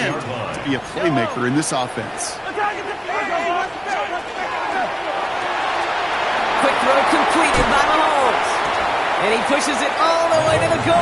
to be a playmaker in this offense. Quick throw completed by Mahomes. And he pushes it all the way to the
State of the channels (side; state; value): both; identical; correlation 1.00